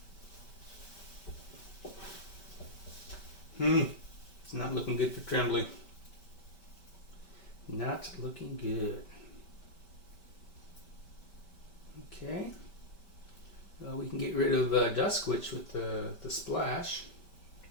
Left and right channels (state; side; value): late; right; 5.2 ms